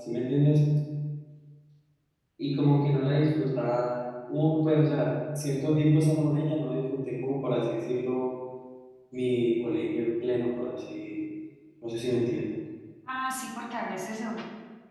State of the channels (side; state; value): both; identical; correlation 1.00